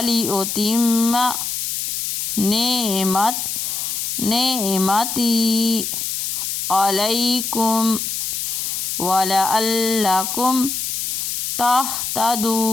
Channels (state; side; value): noise; left; hiss, 2 dB below the sound